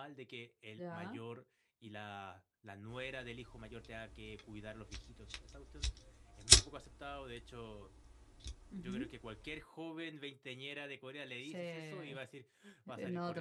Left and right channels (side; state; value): both; identical; correlation 1.00